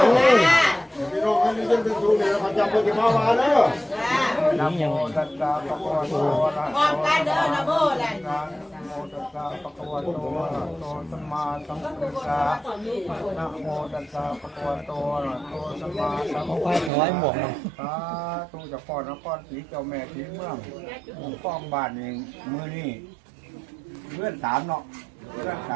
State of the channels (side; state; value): left; drops out; at 16.9 s